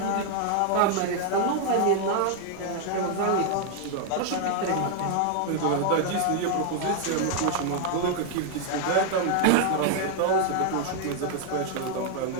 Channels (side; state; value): both; different; correlation 0.00